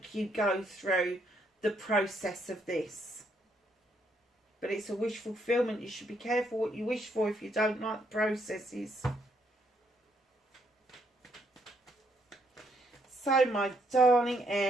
you go through the process of this. But it's a wish fulfillment. You should be careful what you wish for if you don't like the processes. So my darling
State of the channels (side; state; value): both; normal; correlation 0.72